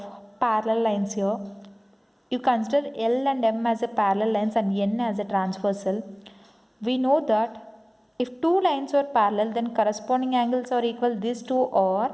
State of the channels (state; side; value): identical; both; correlation 1.00